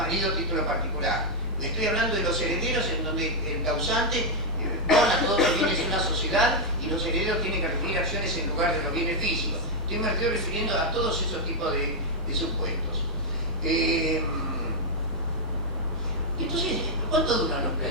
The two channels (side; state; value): both; normal; correlation -0.01